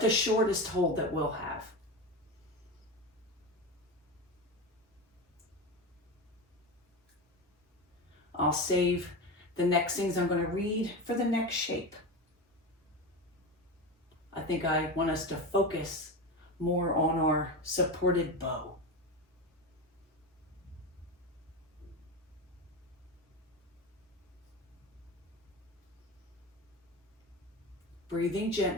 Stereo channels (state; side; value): normal; both; correlation 0.22